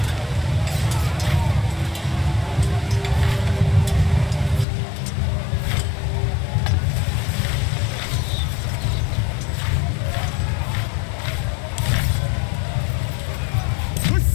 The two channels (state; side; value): drops out; right; at 4.7 s